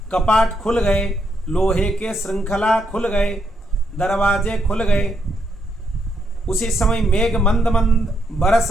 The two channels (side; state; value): both; normal; correlation 0.78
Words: कपाट खुल गए, लोहे के श्रृंखला खुल गए, दरवाजे खुल गए। उसी समय मेघ मंद मंद बरस